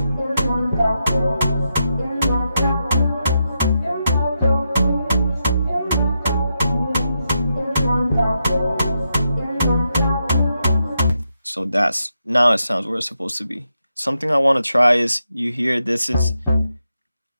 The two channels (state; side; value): inverted; both; correlation -0.84